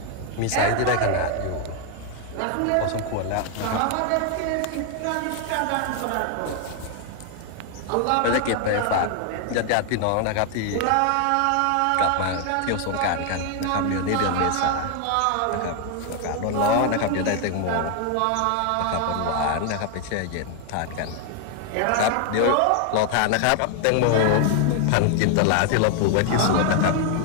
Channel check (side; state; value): both; different; correlation 0.01